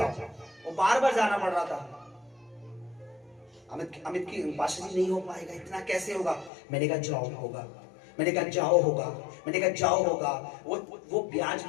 वो बार बार जाना पड़ रहा था। अमित की पाशा जी नहीं हो पाएगा, इतना कैसे होगा? मैंने कहा जाओ होगा, मैंने कहा जाओ होगा, मैंने कहा जाओ होगा। वो ब्याज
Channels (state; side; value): drops out; right; at 6.5 s